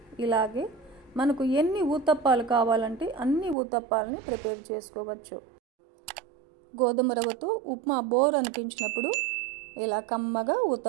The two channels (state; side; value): drops out; left; at 3.6 s